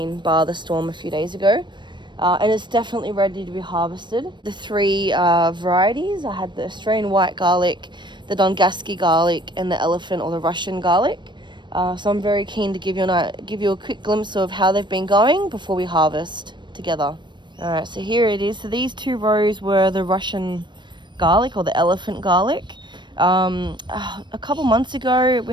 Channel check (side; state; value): left; late; 0.22 ms